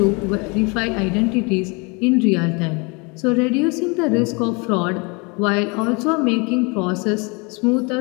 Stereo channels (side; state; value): right; quieter; 30.0 dB